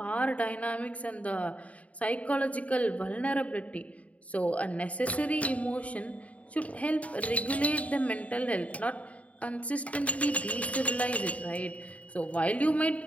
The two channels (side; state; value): right; late; 0.067 ms